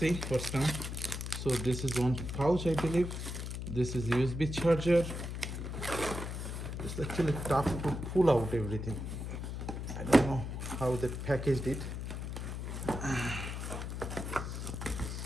what's come. So this is one pouch, I believe. This is USB charger. It's actually tough to pull out everything. I don't know how they packaged it.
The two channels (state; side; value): noise; left; hum, 5 dB below the sound